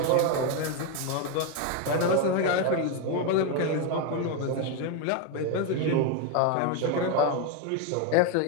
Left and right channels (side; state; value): both; different; correlation 0.02